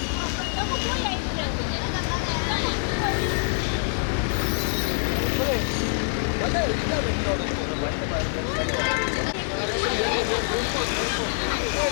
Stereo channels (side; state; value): right; silent; digital silence